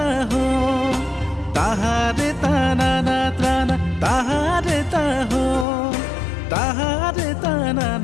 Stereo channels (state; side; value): drops out; right; at 5.7 s